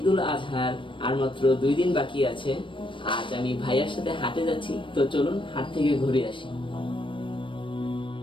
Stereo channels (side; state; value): right; late; 0.25 ms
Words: আজহার আর মাত্র 2 দিন বাকি আছে। আজ আমি ভাইয়ার সাথে হাটে যাচ্ছি, তো চলুন হাট থেকে ঘুরে আসি।